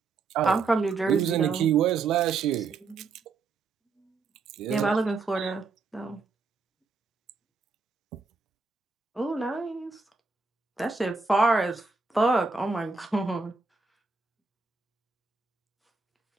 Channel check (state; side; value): quieter; left; 4.3 dB